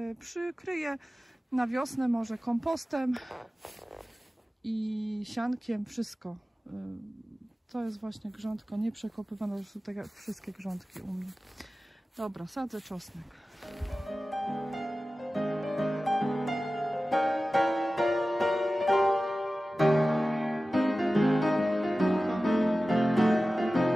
przykryję na wiosnę może kompostem i siankiem, wszystko. To jest właśnie grządka nieprzekopywana, to są tak jak wszystkie grządki u mnie. Dobra, sadzę czosnek.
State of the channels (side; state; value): both; normal; correlation 0.95